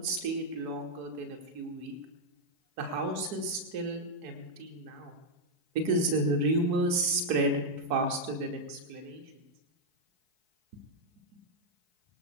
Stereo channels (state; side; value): late; left; 4.6 ms